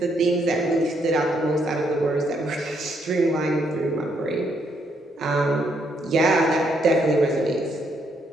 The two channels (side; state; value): both; normal; correlation 0.74